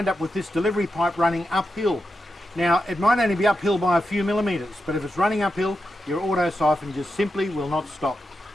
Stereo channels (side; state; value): both; normal; correlation 0.88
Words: up with this delivery pipe running uphill. Now, it might only be uphill by a few millimetres, but if it's running uphill, your auto siphon just simply will not stop.